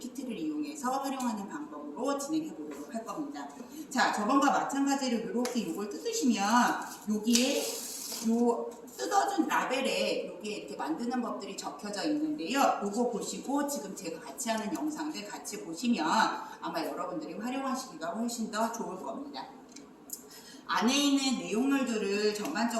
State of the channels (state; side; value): identical; both; correlation 1.00